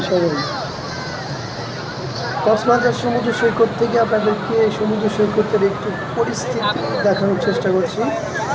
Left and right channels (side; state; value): both; identical; correlation 1.00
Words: সবাই? কক্সবাজার সমুদ্র সৈকত থেকে আপনাদেরকে সমুদ্র সৈকতের একটু পরিস্থিতি দেখানোর চেষ্টা করছি।